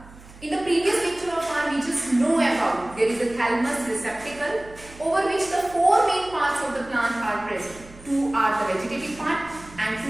In the previous lecture of ours, we just know about there is a thalamus receptacle over which the four main parts of the plant are present. Two are the vegetative part and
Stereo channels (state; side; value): noise; right; hum, 21 dB below the sound